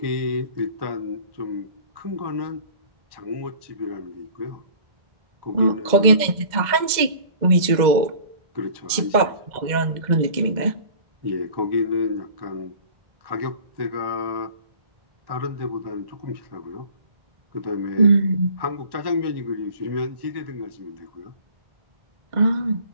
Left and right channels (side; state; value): left; late; 2.0 ms